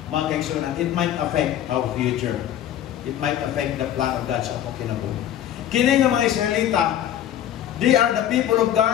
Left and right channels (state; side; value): quieter; right; 11.2 dB